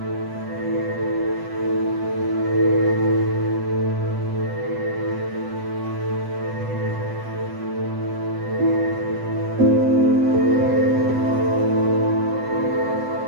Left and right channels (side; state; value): left; late; 8.0 ms